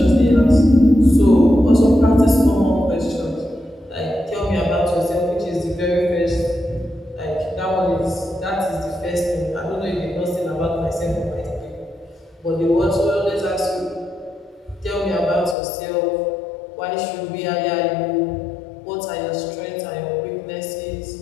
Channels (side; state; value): right; drops out; at 15.6 s